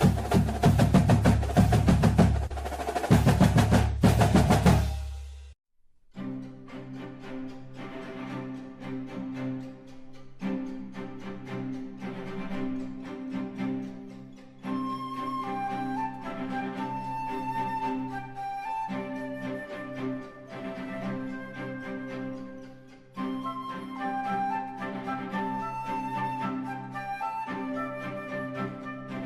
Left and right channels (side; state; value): both; identical; correlation 1.00